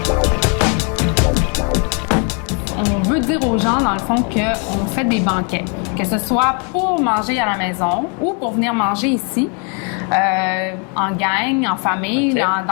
On veut dire aux gens, dans le fond, qu'on fait des banquets. Que ce soit pour manger à la maison ou pour venir manger ici. En gang, en famille. Okay.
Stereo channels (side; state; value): right; quieter; 37.9 dB